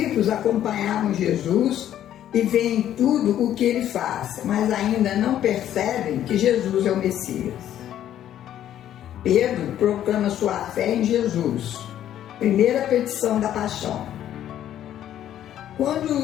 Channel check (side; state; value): right; quieter; 11.3 dB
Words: acompanhavam Jesus e veem tudo o que ele faz, mas ainda não percebem que Jesus é o Messias. Pedro proclama sua fé em Jesus. Primeira petição da paixão.